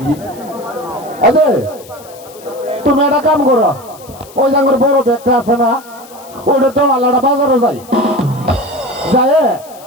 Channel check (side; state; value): left; noise; hiss, 22 dB below the sound